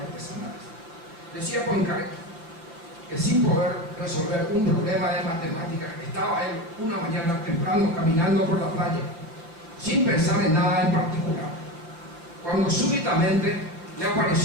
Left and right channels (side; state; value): left; late; 6.0 ms